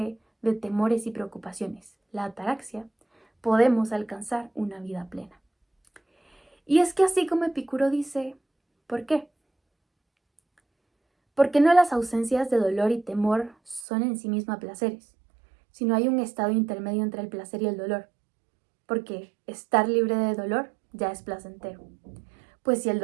de temores y preocupaciones, la ataraxia, podemos alcanzar una vida plena. Y es que así como Epicuro dice, ¿por qué? Porque no las ausencias de dolor y temor son en sí mismas placeres, sino hay un estado intermedio entre el placer y el dolor, porque estar libre de dolor ya es placentero. Pues si el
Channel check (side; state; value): left; drops out; at 13.9 s